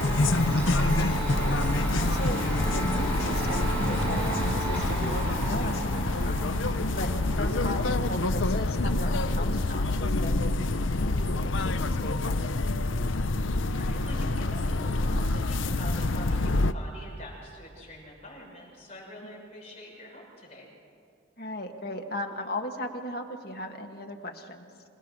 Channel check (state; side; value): normal; both; correlation 0.64